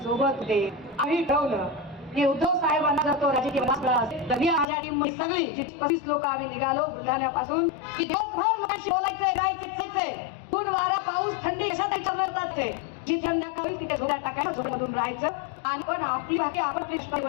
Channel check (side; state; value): right; drops out; at 4.7 s